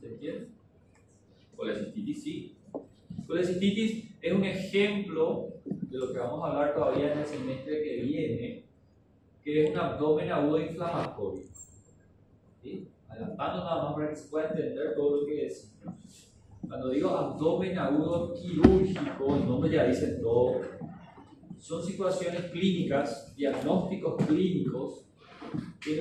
¿Se entiende? Colecistitis sí. Colecistitis es un ejemplo de lo que vamos a hablar todavía en el semestre que viene, que es un abdomen agudo inflamatorio. ¿Sí? Adelantando nada más para que se pueda entender todo lo que es. Cuando digo abdomen agudo quirúrgico, el nombre ya dice todo. Son situaciones clínicas, diagnósticos clínicos, que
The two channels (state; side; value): identical; both; correlation 1.00